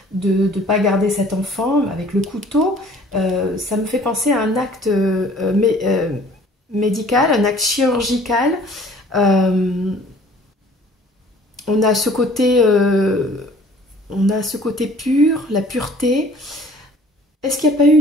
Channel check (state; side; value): normal; both; correlation 0.52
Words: de ne pas garder cet enfant avec le couteau? Ça me fait penser à un acte médical, un acte chirurgical. On a ce côté pur, la pureté. Est-ce qu'il n'y a pas eu